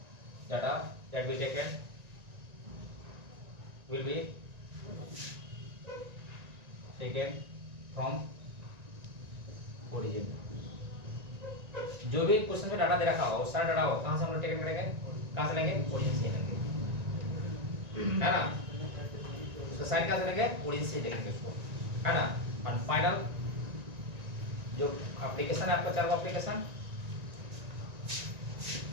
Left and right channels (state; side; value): late; left; 1.9 ms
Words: data that be taken will be taken from origin. जो भी question में data दे रखा होगा, सारा data हो कहां से हम लोग टेकन करेंगे? कहां से लेंगे? ओरिजिन से लेंगे, है ना? उसका साइन कहां से लेंगे? ओरिजिन से लेंगे उसको, है ना? और फाइनल जो एप्लीकेशन है आपका, चार वो application